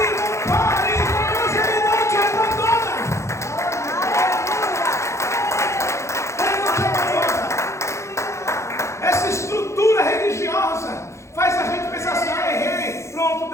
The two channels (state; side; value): late; right; 0.14 ms